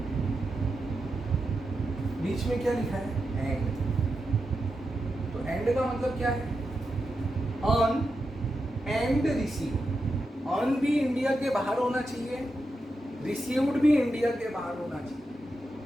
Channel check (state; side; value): normal; both; correlation 0.88